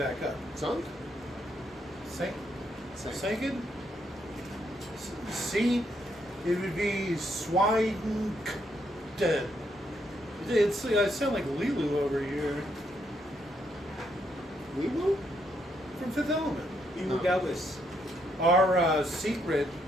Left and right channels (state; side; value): normal; both; correlation 0.76